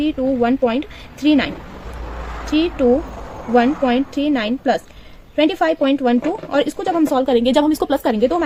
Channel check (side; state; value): both; identical; correlation 1.00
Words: प्लस 25.12 और इसको जब हम सॉल्व करेंगे, जब हम इसको प्लस करेंगे तो